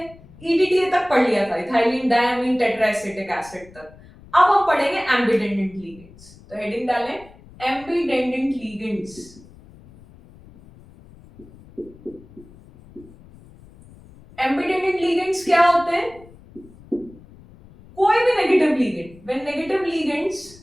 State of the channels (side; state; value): left; noise; rumble, 23 dB below the sound